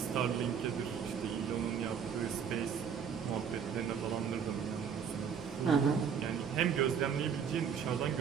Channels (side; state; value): left; quieter; 7.2 dB